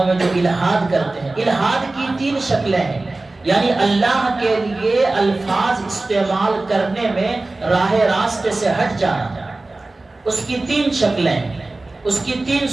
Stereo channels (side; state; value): left; quieter; 3.1 dB